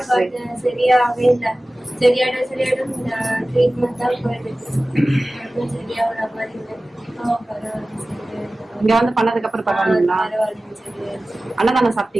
சரியாகவே இல்லை. சரியாயிடும் ட்ரீட்மெண்ட் தான் போயிட்டு சரியாகிற மாதிரி இல்லை. இங்க வந்து பண்ணதுக்கு அப்புறம் பரவாயில்லைங்களா? அன்னதானம்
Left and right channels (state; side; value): normal; both; correlation 0.97